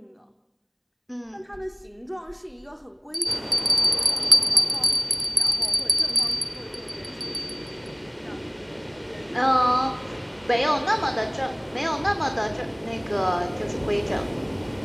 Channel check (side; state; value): both; identical; correlation 1.00